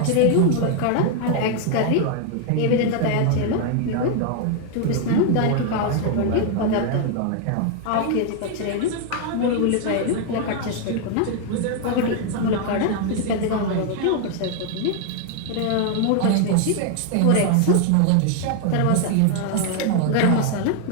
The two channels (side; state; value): both; different; correlation 0.00